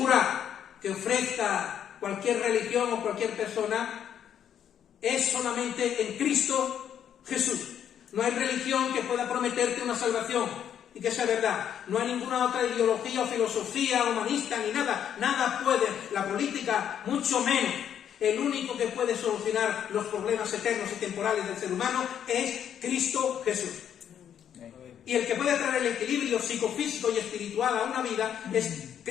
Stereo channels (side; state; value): right; quieter; 9.3 dB